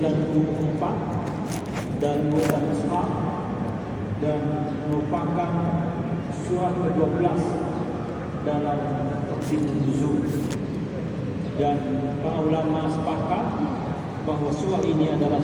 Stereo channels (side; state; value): both; identical; correlation 1.00